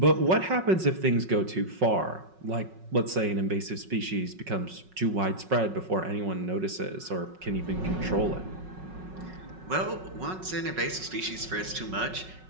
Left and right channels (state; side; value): late; left; 5.4 ms